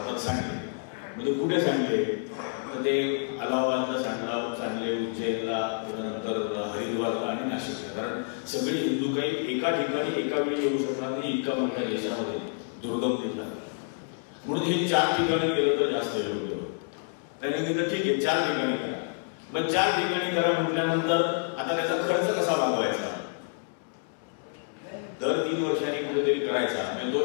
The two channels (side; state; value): right; silent; 59 dB below the other